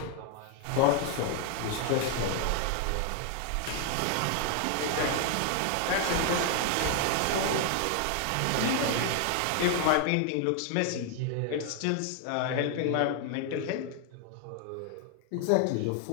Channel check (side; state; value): both; different; correlation 0.00